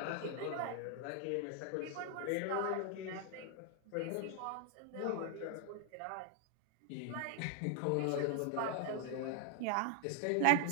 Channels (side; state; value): both; different; correlation 0.00